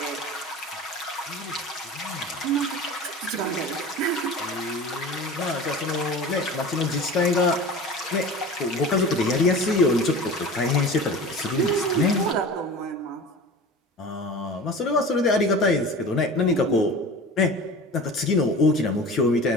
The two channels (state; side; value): normal; both; correlation 0.36